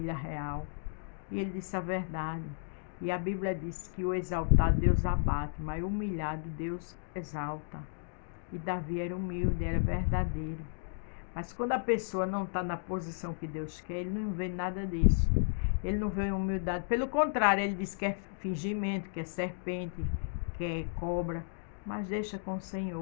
real. E ele disse a verdade. E a Bíblia diz que o exaltado Deus abate, mas o humilhado Deus exalta. E Davi era humilde, era verdadeiro. Mas quando a pessoa não está na posição que Deus quer, ele não vê nada disso. Ele não vê humildade. Pelo contrário, ele diz que é fingimento, que é serpente, que é cobra. Mas deixa com o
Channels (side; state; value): right; silent; digital silence